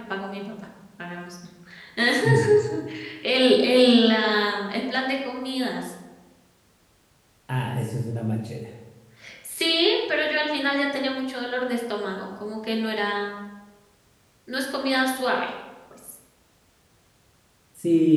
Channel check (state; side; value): identical; both; correlation 1.00